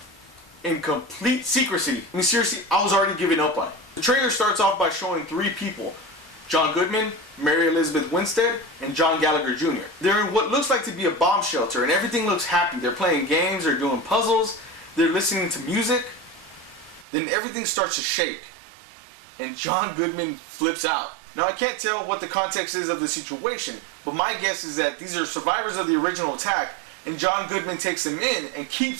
In complete secrecy. I mean, seriously, I was already giving up on it. The trailer starts off by showing three people: John Goodman, Mary Elizabeth Winstead, and John Gallagher Jr. They're in what looks like to be a bomb shelter, and everything looks happy. They're playing games, they're doing puzzles, they're listening to music. Then everything starts to shake, and John Goodman flips out. Now, I can't tell what the context is of the situation, but my guess is that these are survivors of the original attack, and John Goodman takes them in and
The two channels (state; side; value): drops out; left; at 17.1 s